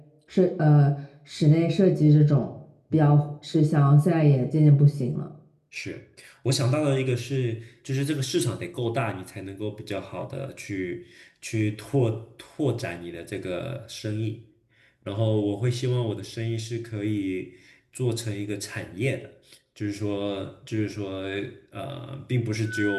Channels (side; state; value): both; identical; correlation 1.00